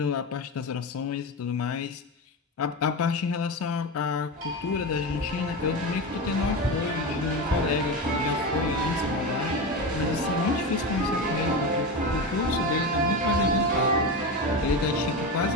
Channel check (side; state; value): both; normal; correlation 0.20